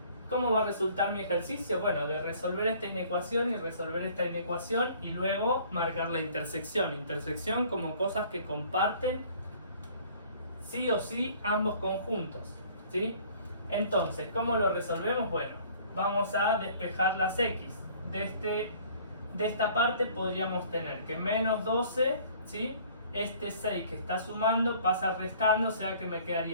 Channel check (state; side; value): inverted; both; correlation -0.54